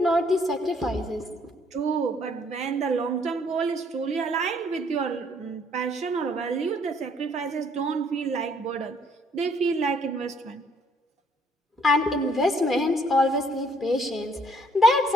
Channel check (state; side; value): normal; both; correlation 0.64